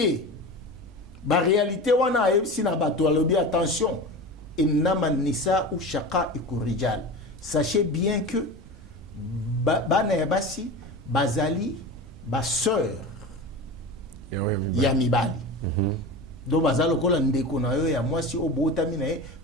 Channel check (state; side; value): normal; both; correlation 0.29